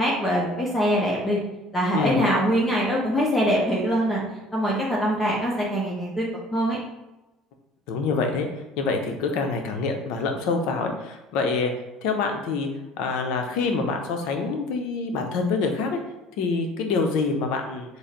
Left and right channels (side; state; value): both; normal; correlation 0.49